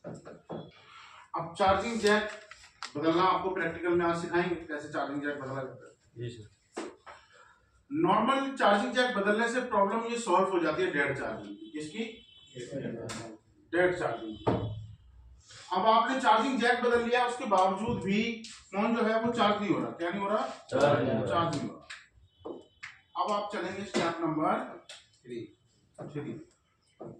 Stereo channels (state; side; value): identical; both; correlation 1.00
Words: अब चार्जिंग जैक बदलना आपको प्रैक्टिकल में आज सिखाएंगे कैसे चार्जिंग जैक बदला जाता है। जी सर। नॉर्मल चार्जिंग जैक बदलने से प्रॉब्लम ये सॉल्व हो जाती है डेड चार्जिंग की। किसकी? Dead charging. अब आपने चार्जिंग जैक बदल लिया, उसके बावजूद भी फोन जो है वो चार्ज नहीं हो रहा। क्या नहीं हो रहा? चार्ज नहीं हो रहा। अब आप चलेंगे step number 3।